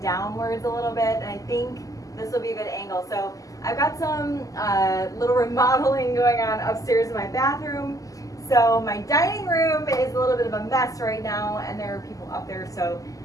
downwards a little bit, and I think this will be a good angle. So I've got some little remodeling going on upstairs in my bathroom. So my dining room is a little bit of a mess right now, and there are people up there. So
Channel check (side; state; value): right; late; 0.17 ms